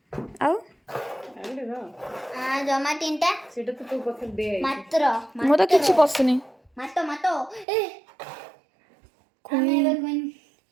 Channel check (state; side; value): drops out; left; at 7.7 s